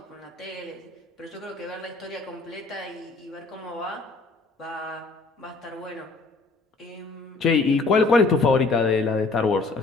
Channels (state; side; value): quieter; right; 3.7 dB